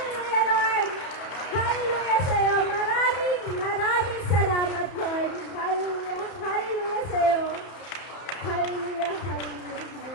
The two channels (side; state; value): right; late; 31 ms